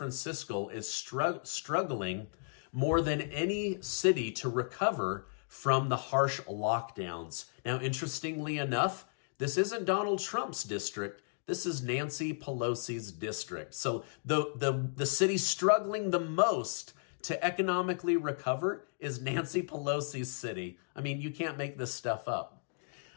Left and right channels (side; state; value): right; silent; digital silence